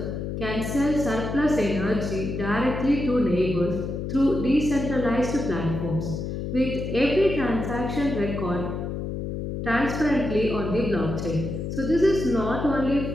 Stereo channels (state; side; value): noise; left; hum, 4 dB below the sound